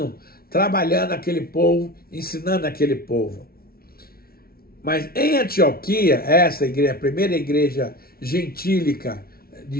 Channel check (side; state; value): right; late; 0.44 ms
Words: trabalhando aquele povo, ensinando aquele povo. Mas em Antioquia, essa igreja, a primeira igreja gentílica de